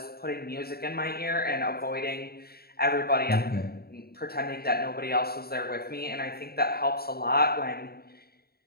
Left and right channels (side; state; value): right; late; 0.45 ms